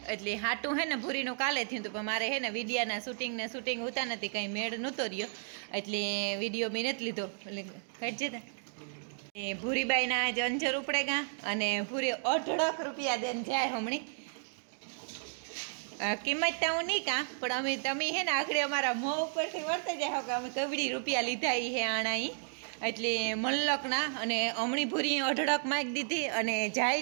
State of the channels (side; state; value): left; silent; digital silence